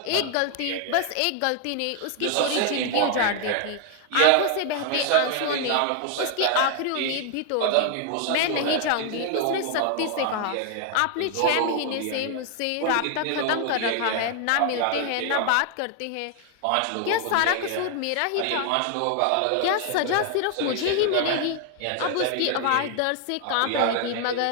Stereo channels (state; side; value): different; both; correlation 0.00